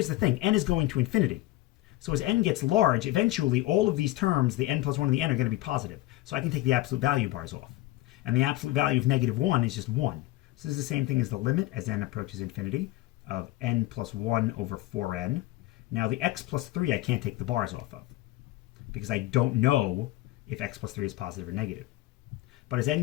the thing. N is going to infinity. So as n gets large, eventually all of these terms, the n plus 1 and the n, are going to be positive. So I can take the absolute value bars off. And the absolute value of -1 is just 1. So this is the same thing as the limit as n approaches infinity of n plus 1 over 4n. Now the x plus 3 I can't take the bars off of because I don't know if x plus 3 is positive or negative. But as n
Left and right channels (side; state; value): right; quieter; 17.5 dB